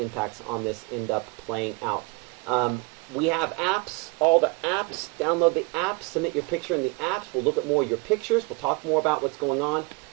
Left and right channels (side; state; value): left; quieter; 27.8 dB